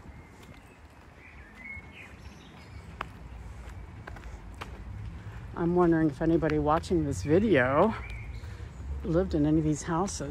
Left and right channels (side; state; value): both; identical; correlation 1.00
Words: I'm wondering if anybody watching this video lived in any of these